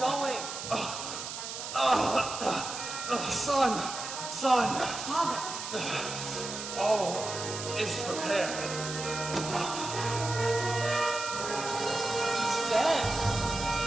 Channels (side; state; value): right; noise; hiss, 7 dB below the sound